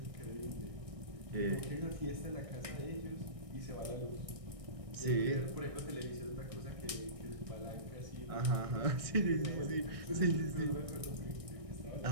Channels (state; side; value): late; left; 1.6 ms